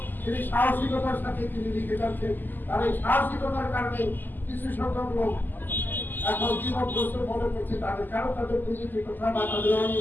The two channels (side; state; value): right; late; 0.088 ms